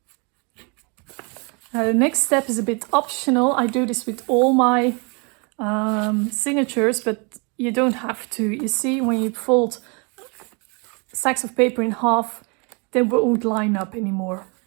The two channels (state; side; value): quieter; left; 32.8 dB